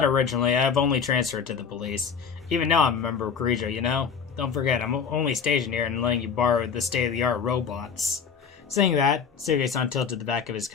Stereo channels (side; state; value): right; quieter; 6.5 dB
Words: originally, I've only transferred to the police. Even now I'm a member of Kirijo, you know? Don't forget, I'm only stationed here and letting you borrow the state-of-the-art robots. Saying that, Suge-san tilted the back of his